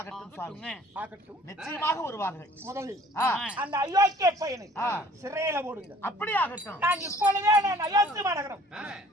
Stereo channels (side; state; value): both; normal; correlation 0.54